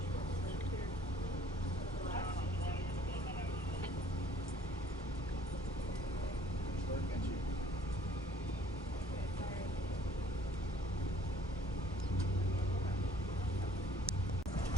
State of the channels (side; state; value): both; normal; correlation 0.57